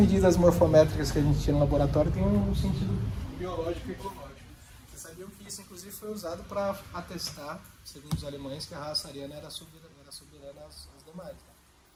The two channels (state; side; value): identical; both; correlation 1.00